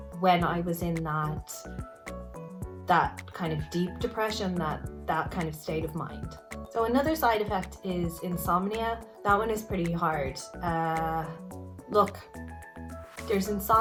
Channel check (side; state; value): both; identical; correlation 1.00